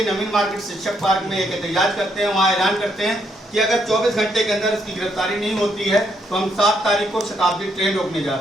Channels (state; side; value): normal; both; correlation 0.74